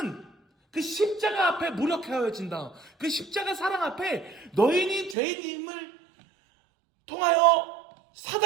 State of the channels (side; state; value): left; drops out; at 5.2 s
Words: 그 십자가 앞에 무력하여진다. 그 십자가 사랑 앞에 너희는 죄인임을 통하여